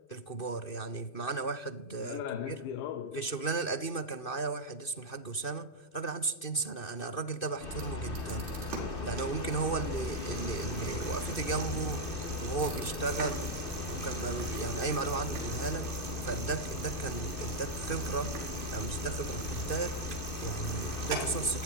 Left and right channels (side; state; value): right; late; 2.6 ms